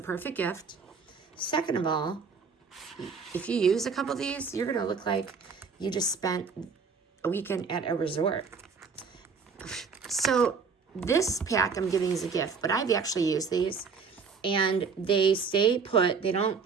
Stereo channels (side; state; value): left; quieter; 5.4 dB